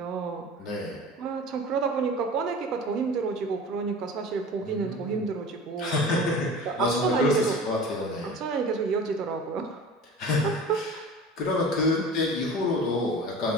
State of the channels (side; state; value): both; normal; correlation 0.38